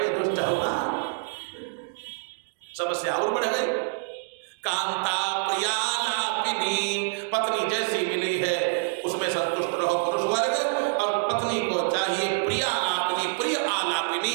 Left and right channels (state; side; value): silent; left; digital silence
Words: दुष्ट हो ना, समस्या और बढ़ गई। कांता प्रिया लापिनी, पत्नी जैसी मिली है उसमें संतुष्ट रहो पुरुष वर्ग, और पत्नी को चाहिए प्रिया लापिनी, प्रिय